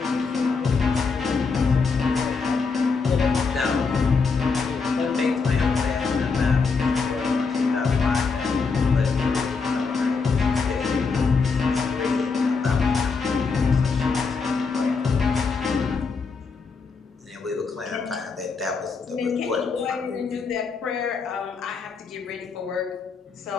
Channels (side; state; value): right; quieter; 4.8 dB